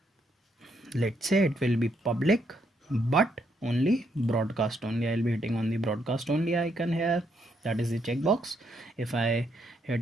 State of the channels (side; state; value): both; normal; correlation 0.75